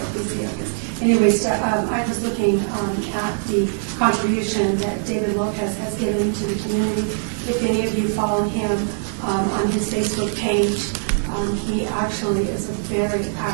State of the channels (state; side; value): silent; left; digital silence